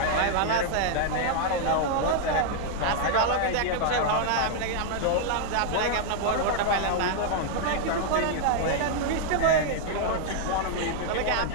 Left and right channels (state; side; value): different; both; correlation -0.01